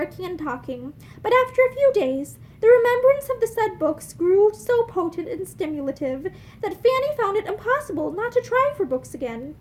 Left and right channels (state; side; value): identical; both; correlation 1.00